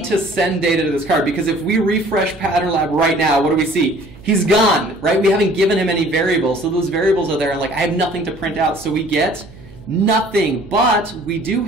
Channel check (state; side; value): noise; right; hum, 20 dB below the sound